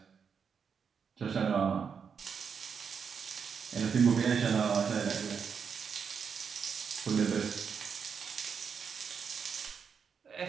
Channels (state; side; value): quieter; left; 6.4 dB